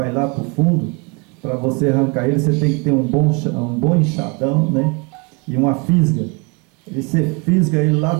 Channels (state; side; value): quieter; left; 30.2 dB